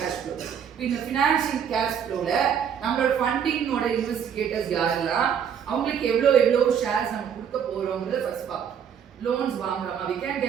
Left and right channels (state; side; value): quieter; left; 8.0 dB